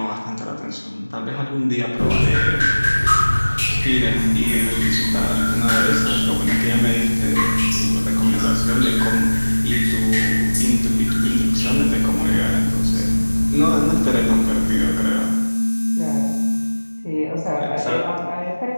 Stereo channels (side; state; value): both; inverted; correlation -1.00